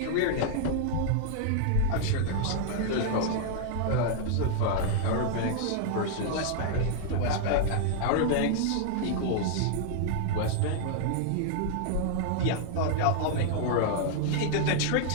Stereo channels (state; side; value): different; both; correlation 0.00